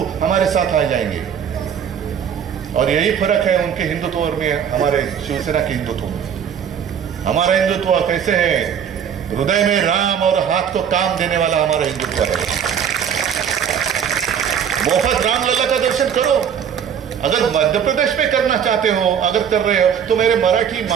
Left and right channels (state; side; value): quieter; left; 8.1 dB